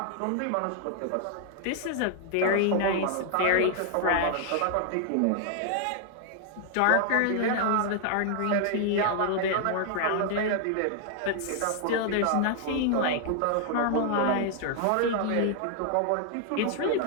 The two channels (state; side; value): different; both; correlation 0.00